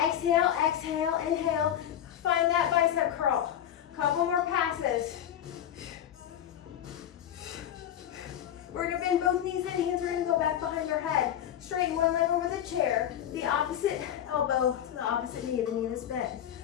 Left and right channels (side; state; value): right; quieter; 10.5 dB